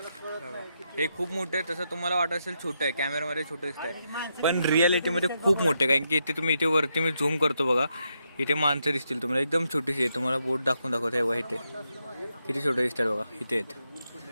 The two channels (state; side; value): inverted; both; correlation -0.82